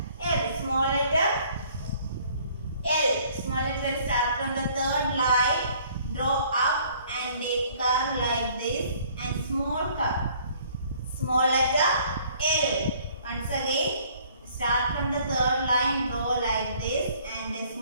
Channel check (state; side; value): inverted; both; correlation -0.59